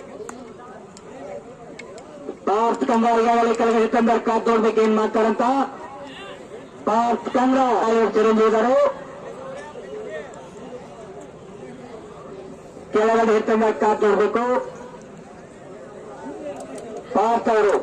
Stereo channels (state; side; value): identical; both; correlation 1.00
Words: ಪಾರ್ಥ ಕಂಗ್ರಾ ಈಗಾಗಲೇ ಕೆಳಗಡೆ ತಂದ ಕಾದ್ ನೋಡ್ಬೇಕು ಏನ್ ಮಾಡ್ತಾರಂತ. ಪಾರ್ಥ ಕಂಗ್ರಾ ಚಿರಂಜೀವಿ ಇದ್ದಾರೆ, ಕೆಳಗಡೆ ಎತ್ತಂದ ಕಾದ್ ನೋಡ್ಬೇಕು ಪಾರ್ಥ ಅವರು.